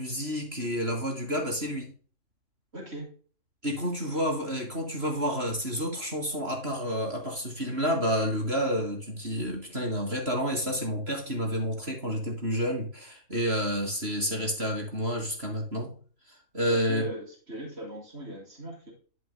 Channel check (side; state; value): left; late; 3.0 ms